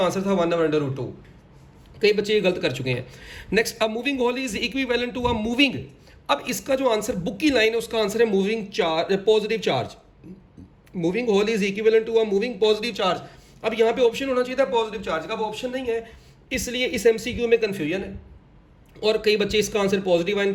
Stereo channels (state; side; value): identical; both; correlation 1.00